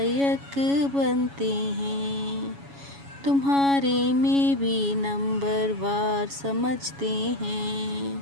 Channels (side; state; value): left; late; 7.2 ms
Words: बनते हैं। तुम्हारे में भी नंबर वार समझते हैं